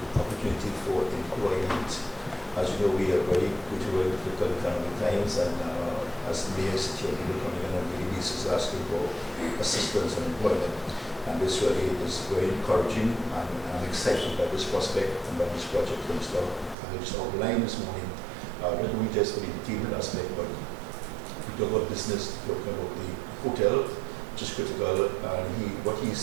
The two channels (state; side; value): drops out; left; at 16.8 s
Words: opportunity for employment. As you know, we are very difficult economic times, and as the mayor here, people coming in on a daily basis asking for assistance and employment. And this really is very encouraging, and I'm excited by this prospect and by this project. I just outlined this morning, not only just for the entertainment aspect, but we talk about business, talking about the hotel, which is critical. What he's